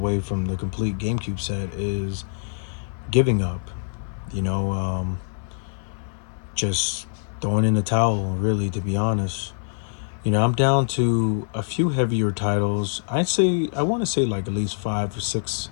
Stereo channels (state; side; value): silent; right; 57 dB below the other